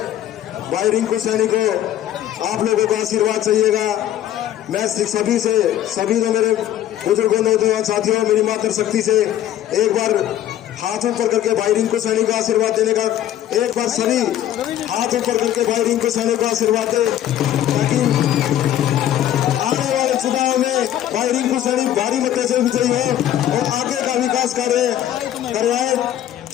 भाई रिंकू सैनी को आप लोगों का आशीर्वाद चाहिएगा। मैं सभी जो मेरे बुजुर्गों, नौजवान साथियों, मेरी मातृशक्ति से एक बार हाथ ऊपर करके भाई रिंकू सैनी का आशीर्वाद देने का, एक बार सभी हाथ ऊपर करके भाई रिंकू सैनी को आशीर्वाद दे, ताकि आने वाले चुनाव में भाई रिंकू सैनी भारी मतों से विजयी हो और आगे का विकास कार्य करवाए।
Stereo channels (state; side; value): quieter; right; 11.8 dB